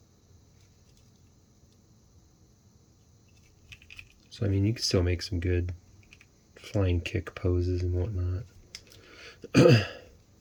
So I mean, you can still make some good flying kick poses and whatnot.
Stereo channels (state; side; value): identical; both; correlation 1.00